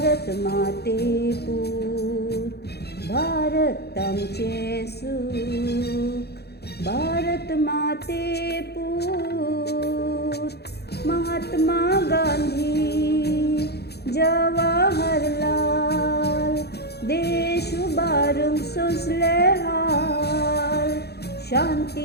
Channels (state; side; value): late; right; 0.48 ms